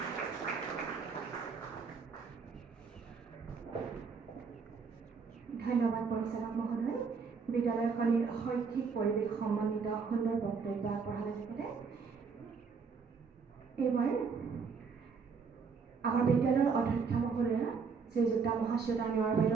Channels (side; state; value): left; quieter; 5.4 dB